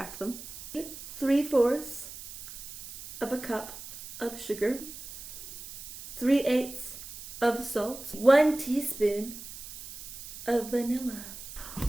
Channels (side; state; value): right; noise; hiss, 12 dB below the sound